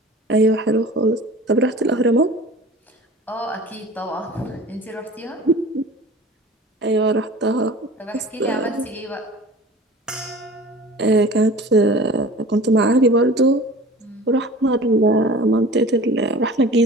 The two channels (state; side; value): normal; both; correlation 0.40